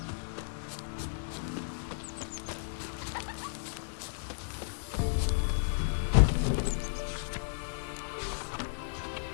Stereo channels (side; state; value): right; silent; digital silence